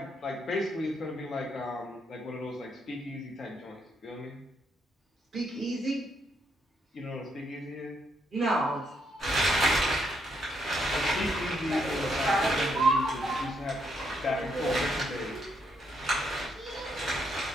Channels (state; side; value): normal; both; correlation 0.76